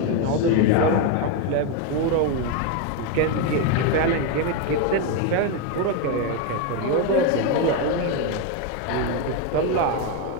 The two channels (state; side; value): different; both; correlation 0.03